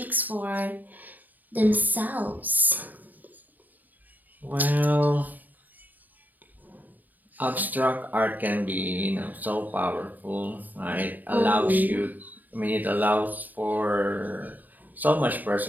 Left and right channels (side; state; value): left; late; 0.085 ms